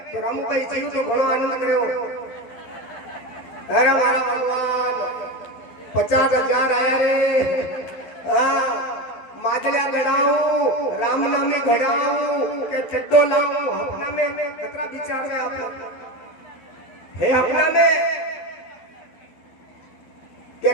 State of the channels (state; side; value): late; right; 12 ms